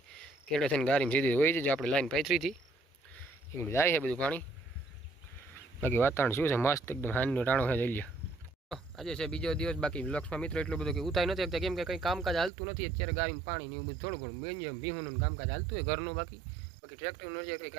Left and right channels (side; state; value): left; drops out; at 12.5 s